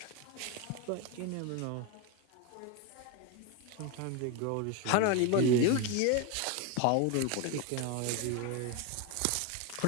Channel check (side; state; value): both; different; correlation 0.02